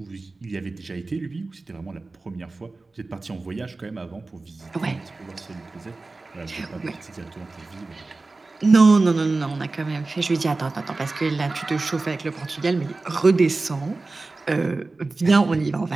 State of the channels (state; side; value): quieter; left; 3.4 dB